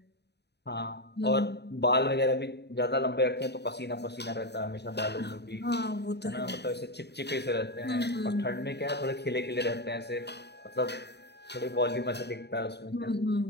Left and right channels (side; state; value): right; late; 0.49 ms